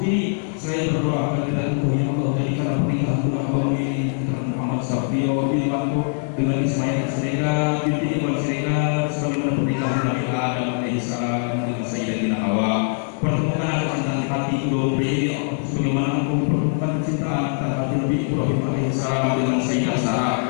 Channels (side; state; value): right; silent; 57 dB below the other